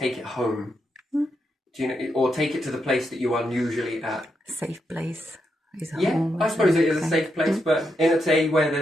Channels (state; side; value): normal; both; correlation 0.83